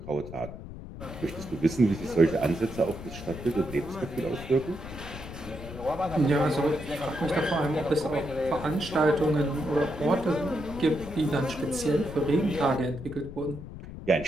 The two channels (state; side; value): noise; left; rumble, 12 dB below the sound